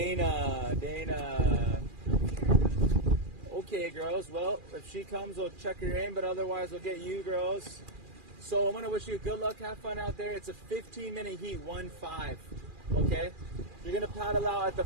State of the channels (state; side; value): late; left; 2.4 ms